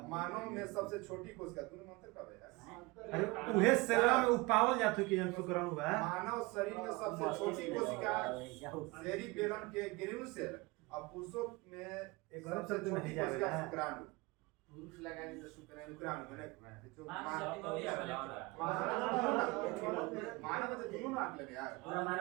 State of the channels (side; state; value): left; quieter; 23.7 dB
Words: मानव में सबसे छोटी कोशिका दोनों मंत्र कब है? अरे उहे सेलवा में उपावल जात हो कि हम शुक्राणु बा। मानव शरीर में सबसे छोटी कोशिका सेरिबेलम के ग्रेन्यूल सेल और पुरुषों में सबसे छोटी कोशिका शुक्राणु। पुरुष लगाएंगे तो शुक्राणु माने जो मानव में तो दोनों नाक लगे यार। पूरा